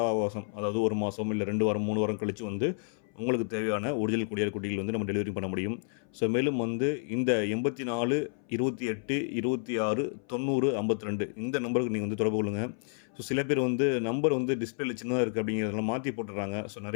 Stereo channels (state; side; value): silent; right; 58 dB below the other